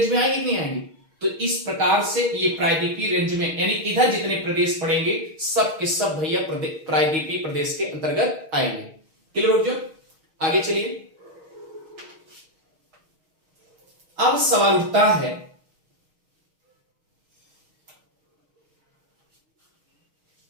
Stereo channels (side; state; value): left; late; 6.4 ms